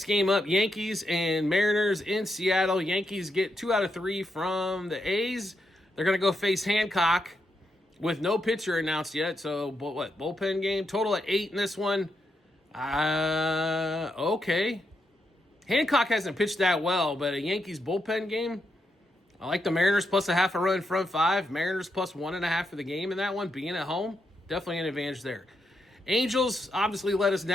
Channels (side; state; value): both; normal; correlation 0.82